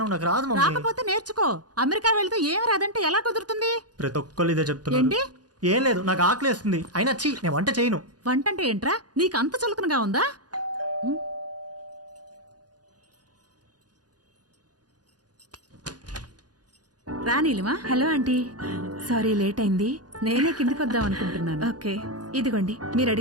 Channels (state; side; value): late; left; 0.69 ms